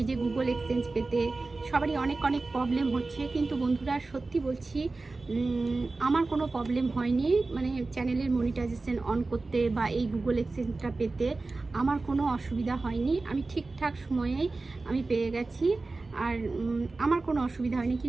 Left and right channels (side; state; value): left; quieter; 3.5 dB